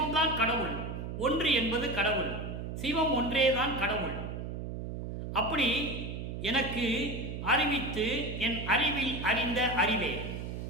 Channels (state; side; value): noise; right; hum, 6 dB below the sound